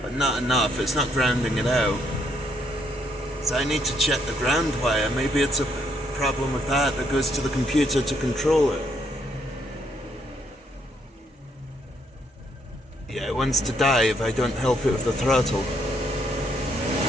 but not enough. It's not grounding it out. So I need to check the ground wire. Maybe it's a problem with that goes to the computer to control it. Yeah, it wants to die if I don't help it with the throttle.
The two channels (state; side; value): normal; both; correlation 0.72